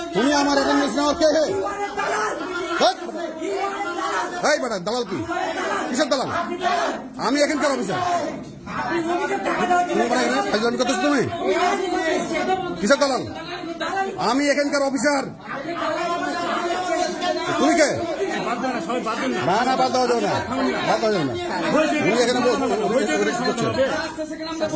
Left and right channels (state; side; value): identical; both; correlation 1.00